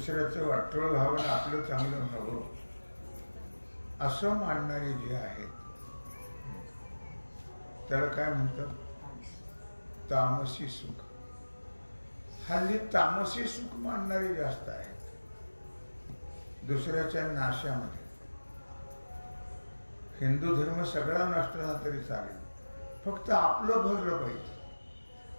वाटोळ व्हावं, आपलं चांगलं व्हावं असं मानणारे जे आहेत त्याला काय म्हणतात? तामसी सुख. हल्ली तामसी सुख मानणारे जास्त आहेत. दुसऱ्याच्या नाशामध्ये हिंदू धर्म सगळा नष्ट झाला तरी चालेल, फक्त आपलं भरलं पाहिजे.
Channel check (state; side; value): inverted; both; correlation -1.00